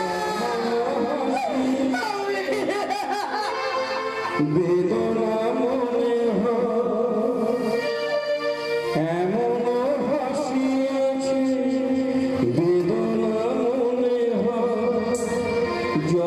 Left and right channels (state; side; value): identical; both; correlation 1.00